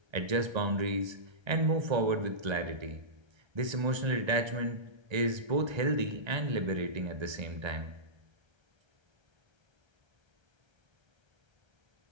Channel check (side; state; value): left; late; 1.3 ms